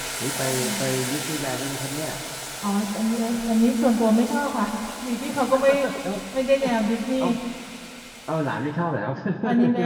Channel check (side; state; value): both; identical; correlation 1.00